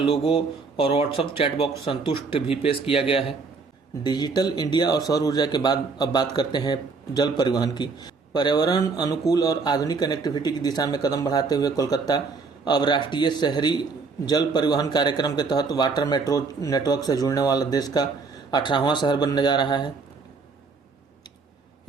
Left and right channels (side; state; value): left; quieter; 4.5 dB